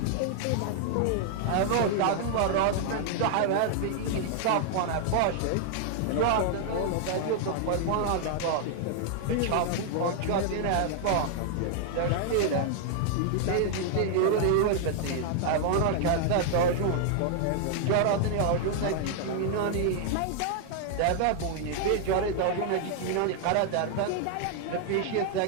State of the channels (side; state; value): both; different; correlation 0.00